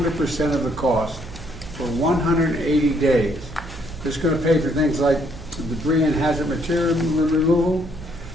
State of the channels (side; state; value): right; noise; hum, 15 dB below the sound